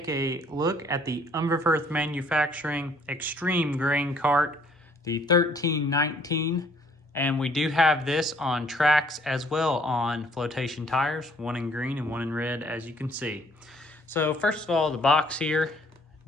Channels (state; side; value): normal; both; correlation 0.61